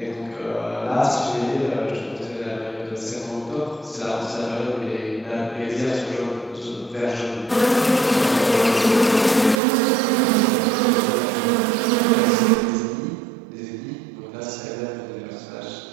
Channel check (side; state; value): left; drops out; at 9.6 s